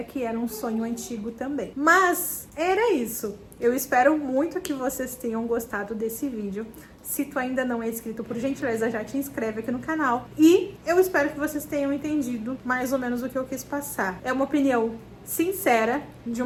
que era um sonho antigo também. Mas era isso. Eu espero muito que vocês tenham gostado desse vídeo. Se tu ainda não é inscrito, por gentileza, já te inscreve aqui no canal. E eu espero que vocês tenham entendido mais ou menos o que eu quis passar. É uma opinião sincera de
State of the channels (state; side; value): identical; both; correlation 1.00